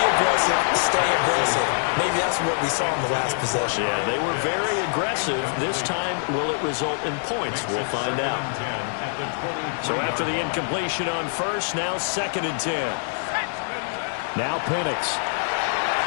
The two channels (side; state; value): right; silent; digital silence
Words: stay aggressive. Maybe that's what we saw in the last possession. Yeah, they were very aggressive. This time, will it result in points? We'll find out. So after the incompletion on 1st, now 2nd and 10. Now Penix.